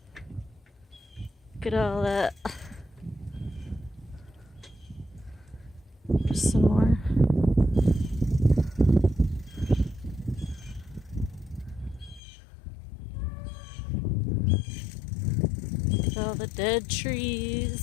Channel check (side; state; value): right; drops out; at 12.2 s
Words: Look at all that. There's some more. Look at all the dead